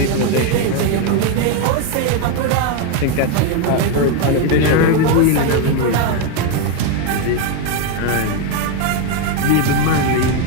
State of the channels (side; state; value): both; different; correlation 0.02